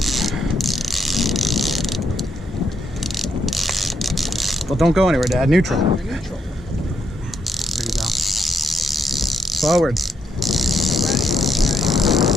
Well, don't go anywhere, Dad. Neutral. There you go. Forward.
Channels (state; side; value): normal; both; correlation 0.78